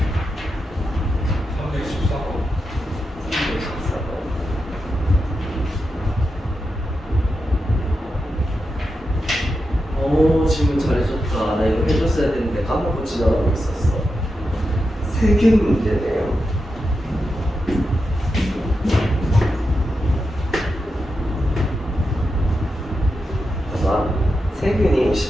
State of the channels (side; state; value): both; normal; correlation 0.88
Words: 오, 질문 잘해줬다. 나 이거 해줬어야 되는데 까먹고 지나가고 있었어. 세균 문제네요. 봐봐, 세균이